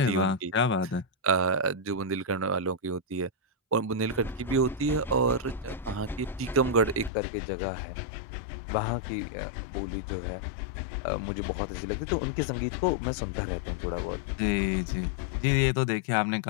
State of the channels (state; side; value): drops out; right; at 7.1 s